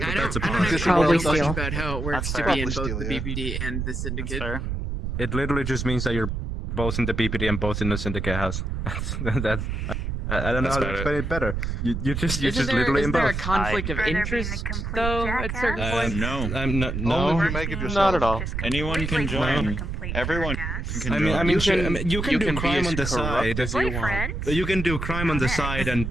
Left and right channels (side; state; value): right; noise; rumble, 3 dB below the sound